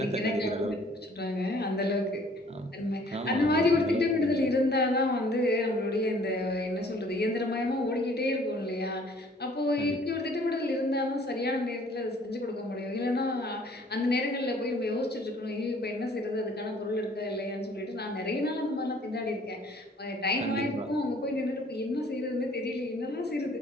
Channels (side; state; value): both; normal; correlation 0.57